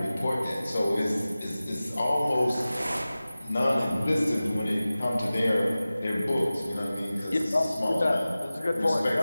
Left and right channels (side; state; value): both; inverted; correlation -0.96